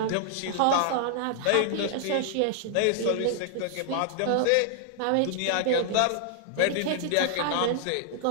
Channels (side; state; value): both; different; correlation 0.00